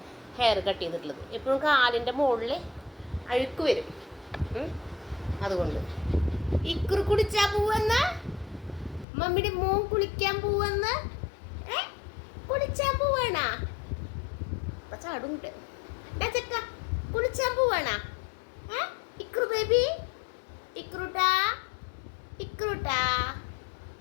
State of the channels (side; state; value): right; drops out; at 9.1 s